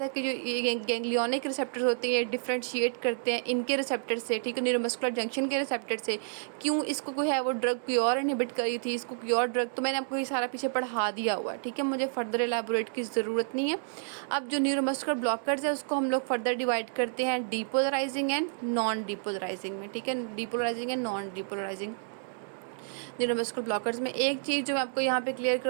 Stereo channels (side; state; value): left; silent; digital silence